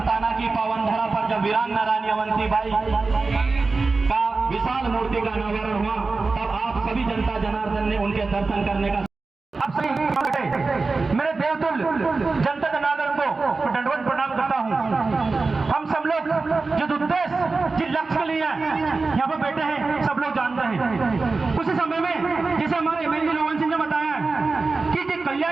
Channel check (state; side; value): quieter; left; 3.9 dB